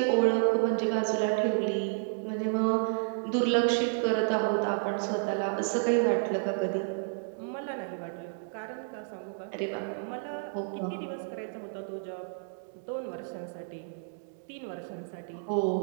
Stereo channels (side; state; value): left; silent; digital silence